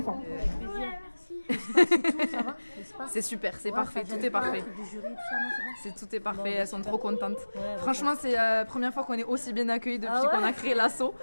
C'est super, c'est parfait, tout est parfait. Tout est parfait, elles sont trop contentes. Franchement, c'est la première fois qu'on est aussi bien accueillis depuis qu'on a créé l'asso.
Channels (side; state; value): both; inverted; correlation -1.00